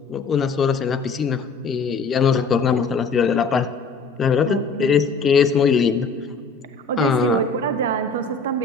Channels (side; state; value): right; quieter; 4.4 dB